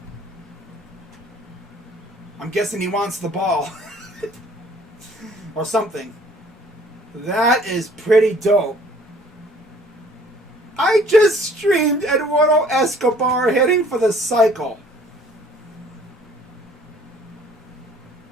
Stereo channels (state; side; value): normal; both; correlation 0.55